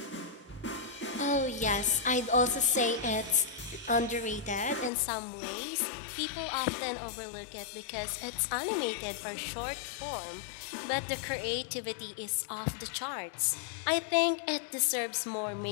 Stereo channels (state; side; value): drops out; right; at 4.9 s